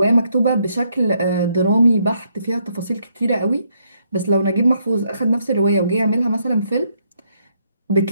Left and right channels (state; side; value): inverted; both; correlation -0.74